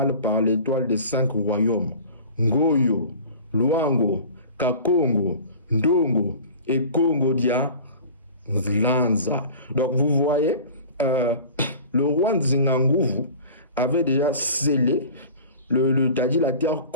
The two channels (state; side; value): inverted; both; correlation -0.41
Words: par l'étoile des 5 royaumes. Ngoyo, Luango, Kakongo, Ndongo et Congo Dia Lanza. Donc vous voyez, le roi Nzinganguvu avait déjà scellé la terre